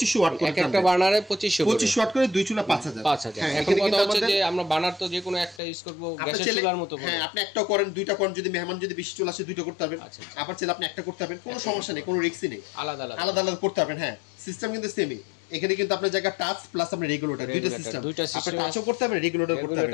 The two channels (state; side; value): drops out; right; at 5.6 s